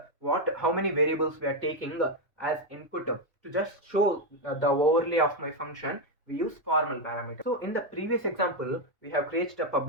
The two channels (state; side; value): normal; both; correlation 0.05